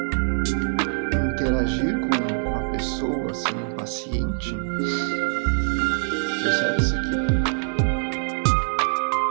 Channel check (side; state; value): left; silent; 63 dB below the other